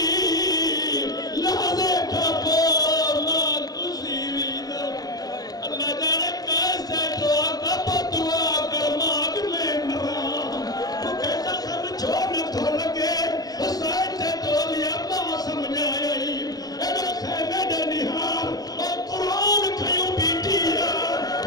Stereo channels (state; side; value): late; right; 0.19 ms